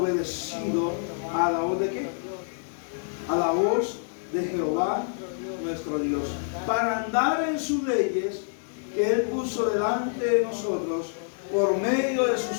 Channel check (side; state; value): right; silent; digital silence